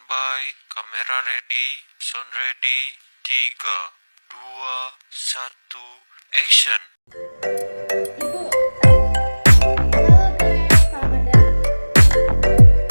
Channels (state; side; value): inverted; both; correlation -1.00